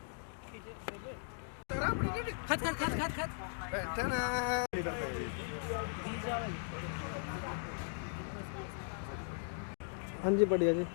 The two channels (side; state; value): right; silent; digital silence